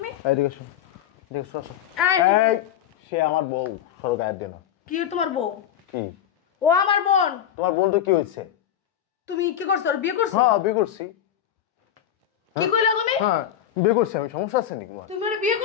এইদিকে এসো, এদিকে এসো, আসো। এই, এই সে আমার বউ, সরো গায়ের দেনা। কি তোমার বউ? কি? ও আমার বোন। তোমার বোন তো কি হয়েছে? তুমি কি করছো? বিয়ে করছো? হ্যাঁ বিয়ে করছি। কি কইলা তুমি? হ্যাঁ বিয়ে করছি আমি, সমস্যা আছে নাকি তোমার? তুমি ওরে বিয়ে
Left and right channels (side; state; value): right; quieter; 10.1 dB